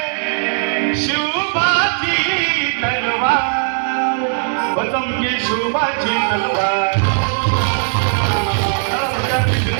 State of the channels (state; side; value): silent; left; 68 dB below the other